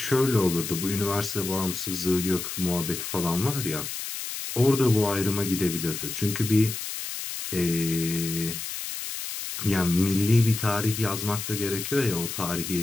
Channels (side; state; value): left; noise; hiss, 6 dB below the sound